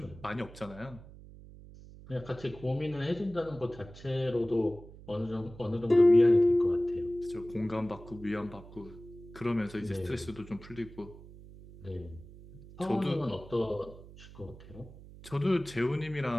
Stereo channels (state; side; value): noise; right; hum, 18 dB below the sound